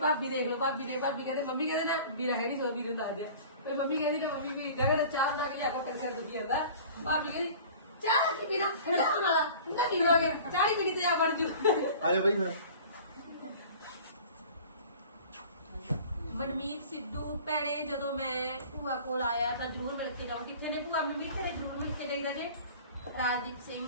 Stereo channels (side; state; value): both; inverted; correlation -0.43